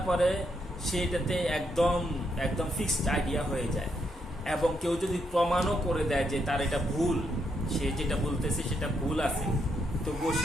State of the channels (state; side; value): normal; both; correlation 0.78